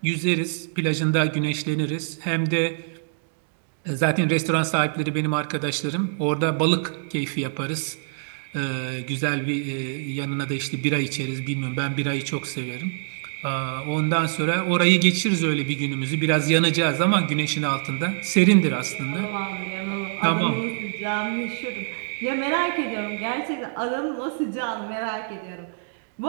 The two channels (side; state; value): left; silent; 62 dB below the other